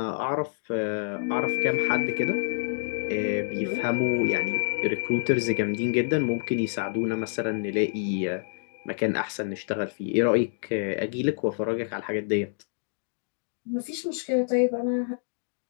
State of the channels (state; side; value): silent; right; digital silence